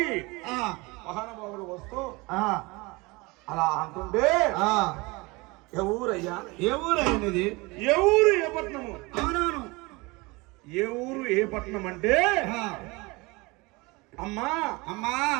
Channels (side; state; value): left; quieter; 24.6 dB